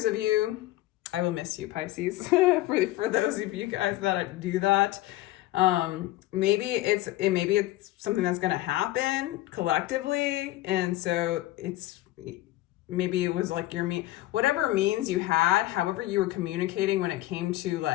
of you, I will miss you, Pisces. for those of you guys that do that, maybe it's something that's going to happen collectively, and so it's maybe it was like your whatever means you had, however you were communicating when it came to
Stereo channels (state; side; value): quieter; right; 16.4 dB